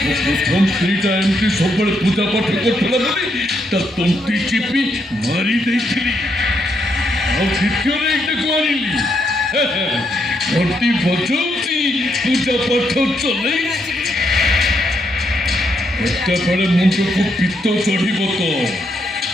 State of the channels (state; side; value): normal; both; correlation 0.78